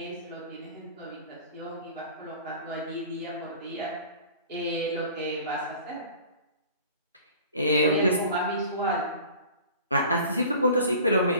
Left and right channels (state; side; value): inverted; both; correlation -0.44